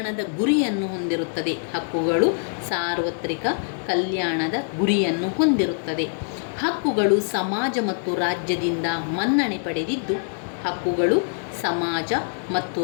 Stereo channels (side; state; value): right; silent; digital silence